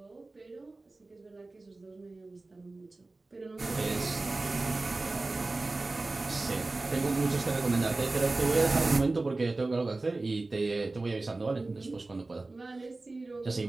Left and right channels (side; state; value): left; quieter; 3.2 dB